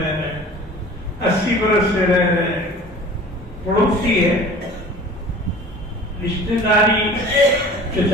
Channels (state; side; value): normal; both; correlation 0.43